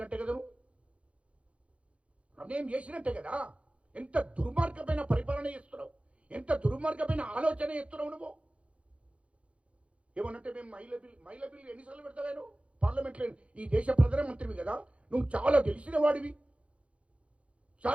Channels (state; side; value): late; left; 0.062 ms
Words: కదా నువ్వు? అన్యాయం చేసినట్టే కదా. ఎంత దుర్మార్గమైన పరిపాలన చేస్తున్నావు, ఎంత దుర్మార్గమైన ఆలోచన చేస్తున్నావు నువ్వు. ఏమనంటే మేము మహిళ బిల్లు ఎన్నిసార్లు పెడతావేను పార్లమెంట్లో? ఈ దేశ ప్రధానమంత్రివి కదా, నువ్వు చాలా తెలిసిన వాడివి,